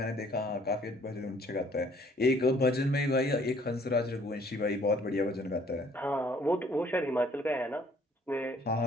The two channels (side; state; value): both; normal; correlation 0.60